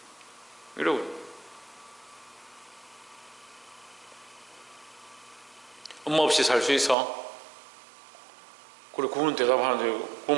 이러고 엄마 없이 살 수 있어? 그래 그분은 대답하는데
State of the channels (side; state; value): left; drops out; at 7.0 s